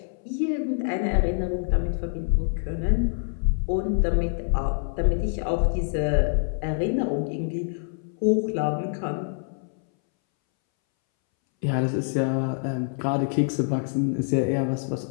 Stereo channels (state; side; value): silent; right; 61 dB below the other